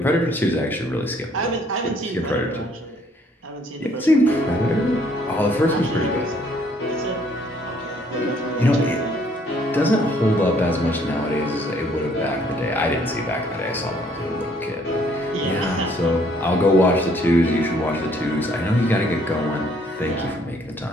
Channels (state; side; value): normal; both; correlation 0.63